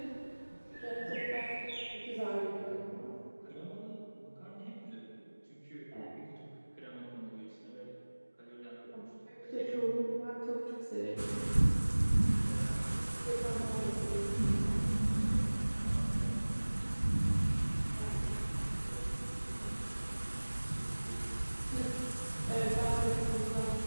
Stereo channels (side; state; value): both; inverted; correlation -1.00